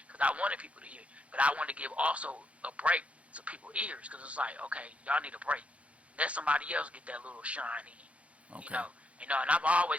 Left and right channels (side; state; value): left; late; 0.064 ms